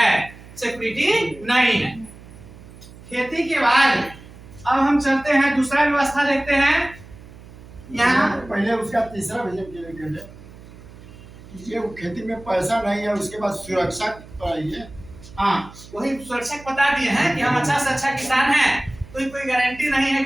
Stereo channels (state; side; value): noise; right; hum, 19 dB below the sound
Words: सिक्योरिटी नहीं है। खेती के बाद अब हम चलते हैं दूसरा व्यवस्था देखते हैं। यहाँ पहले उसका तीसरा विजन ये खेती में पैसा नहीं है, उसके बाद सुरक्षा है। हाँ, वही सुरक्षा बता दिए हैं कि हम अच्छा से अच्छा किसान हैं, कोई गारंटी नहीं है